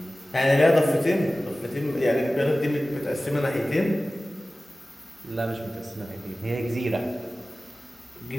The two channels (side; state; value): both; normal; correlation 0.96